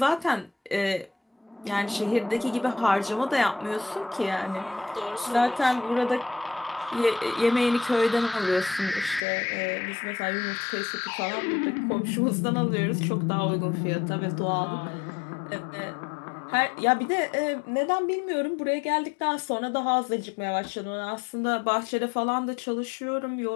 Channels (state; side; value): drops out; right; at 9.2 s